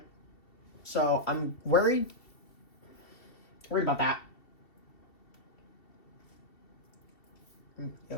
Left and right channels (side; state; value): right; late; 2.7 ms